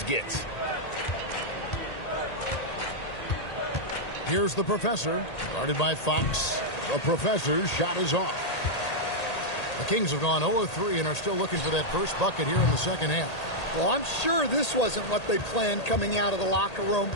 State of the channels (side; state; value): right; late; 1.8 ms